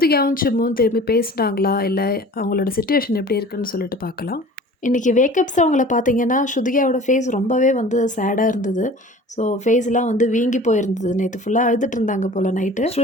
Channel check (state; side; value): normal; both; correlation 0.43